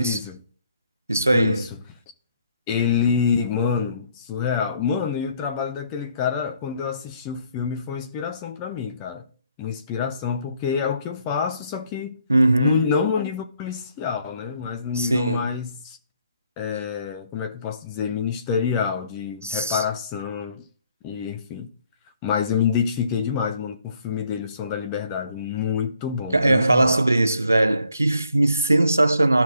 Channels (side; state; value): both; inverted; correlation -0.67